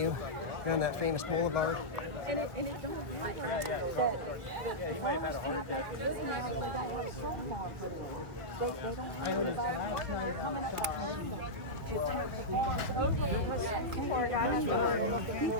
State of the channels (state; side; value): late; left; 2.2 ms